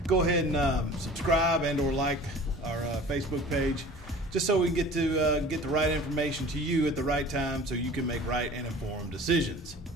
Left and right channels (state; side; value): normal; both; correlation 0.44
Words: go ahead and subscribe and or like our Facebook page, just so we can get the right information to you at the right time so you can make right and informed decisions.